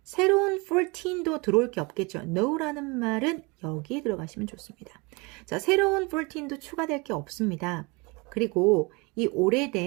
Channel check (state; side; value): quieter; left; 27.7 dB